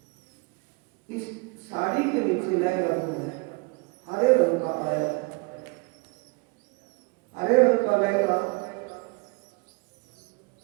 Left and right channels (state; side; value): quieter; left; 29.2 dB